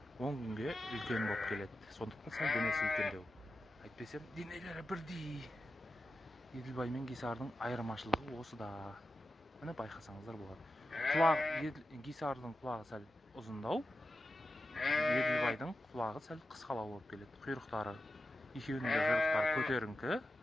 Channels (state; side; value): normal; both; correlation 0.90